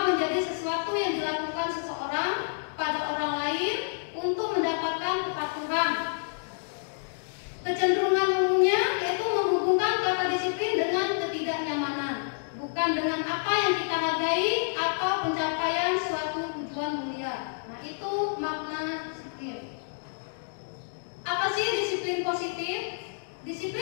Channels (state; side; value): silent; right; digital silence